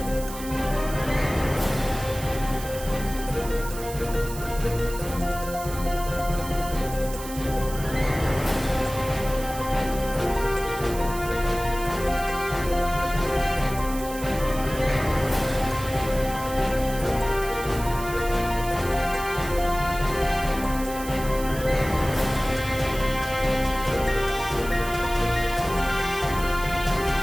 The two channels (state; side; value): noise; right; hiss, 12 dB below the sound